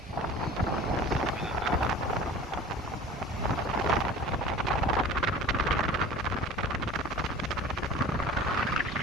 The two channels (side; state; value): both; normal; correlation 0.41